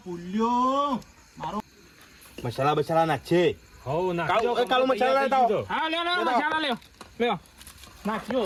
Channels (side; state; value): both; identical; correlation 1.00